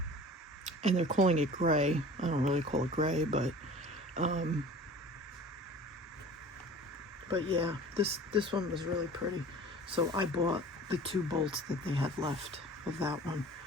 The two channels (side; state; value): both; normal; correlation 0.42